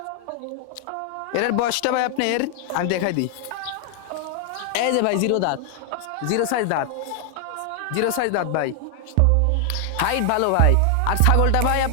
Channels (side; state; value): both; different; correlation 0.00